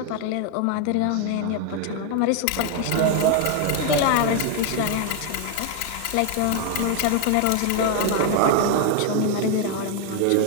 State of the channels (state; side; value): different; both; correlation 0.00